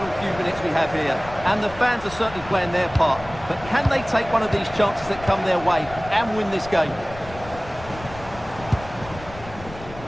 few minutes we have here. And the fans are certainly playing their part. But can they take one of these chances that come their way and win this game?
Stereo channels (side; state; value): left; noise; rumble, 16 dB below the sound